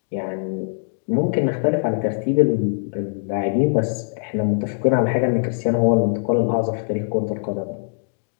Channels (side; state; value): right; silent; digital silence